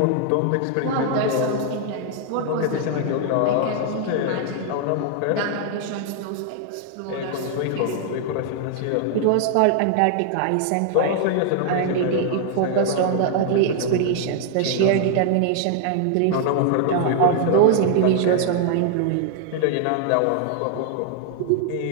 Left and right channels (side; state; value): both; different; correlation 0.00